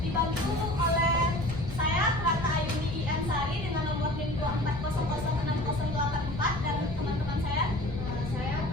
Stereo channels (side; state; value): left; noise; rumble, 8 dB below the sound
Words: oleh saya Rata Ayuni Ansari dengan nomor NIM 240060084 dan teman-teman saya